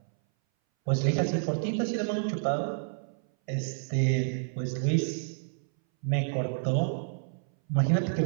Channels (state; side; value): silent; left; 58 dB below the other